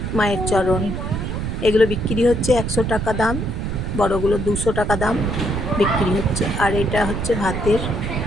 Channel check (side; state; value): right; noise; rumble, 3 dB below the sound